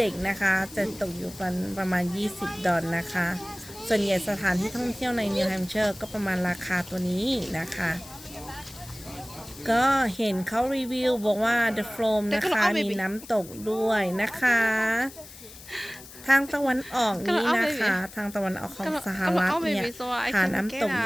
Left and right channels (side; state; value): left; noise; hiss, 17 dB below the sound